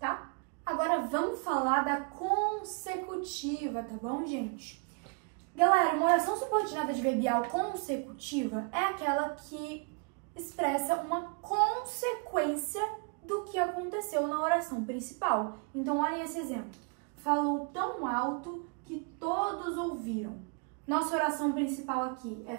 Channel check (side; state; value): left; quieter; 37.3 dB